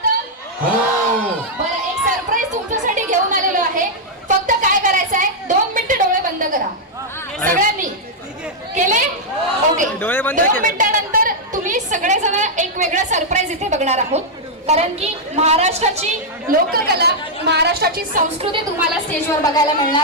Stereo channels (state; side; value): normal; both; correlation -0.05